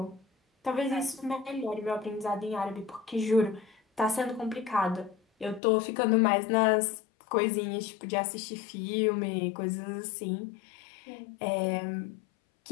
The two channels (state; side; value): drops out; right; at 5.6 s